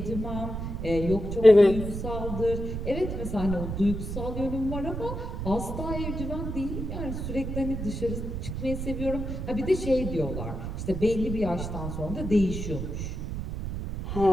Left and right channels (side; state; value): right; noise; rumble, 5 dB below the sound